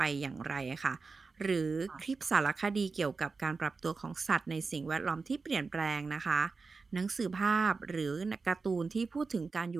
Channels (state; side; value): quieter; left; 4.4 dB